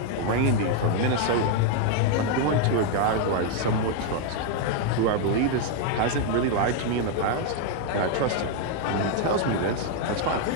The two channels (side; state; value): both; different; correlation 0.00